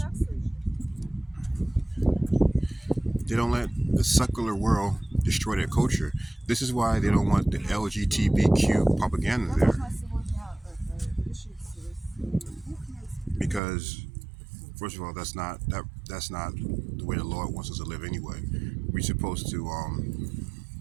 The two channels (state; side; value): drops out; left; at 13.6 s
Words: They don't let the secular world destroy their culture. This is why they don't want the LGBTQ propaganda there, because first of all, that's not the way the Lord wants us to live anyway. We're supposed to